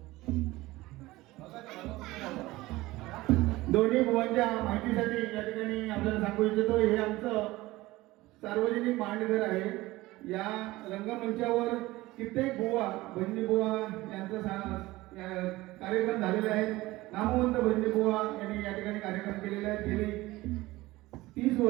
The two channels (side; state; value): left; quieter; 18.9 dB